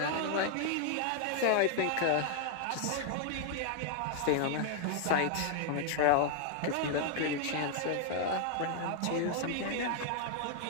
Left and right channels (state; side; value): different; both; correlation 0.00